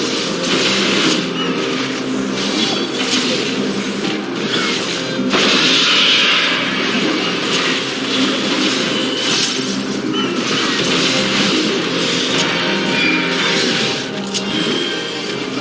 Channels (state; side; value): identical; both; correlation 1.00